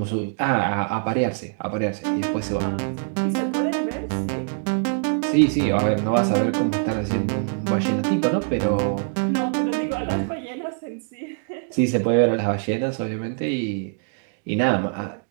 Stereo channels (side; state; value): left; silent; digital silence